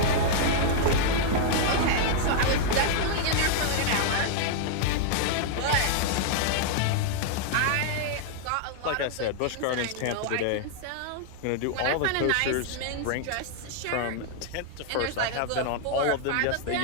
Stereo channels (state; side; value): different; both; correlation -0.01